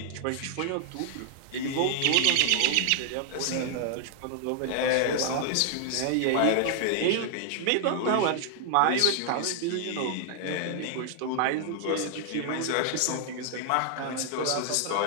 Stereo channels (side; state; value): both; different; correlation 0.00